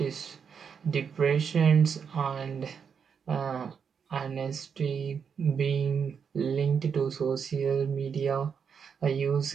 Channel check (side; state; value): left; quieter; 6.7 dB